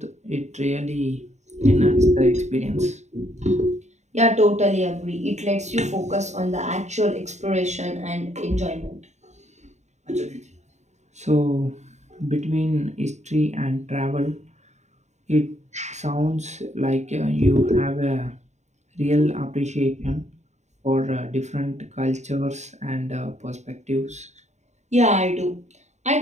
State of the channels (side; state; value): left; late; 0.33 ms